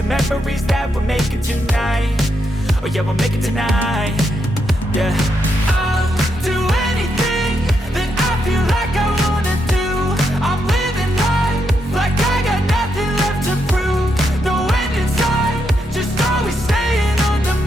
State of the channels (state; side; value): normal; both; correlation 0.81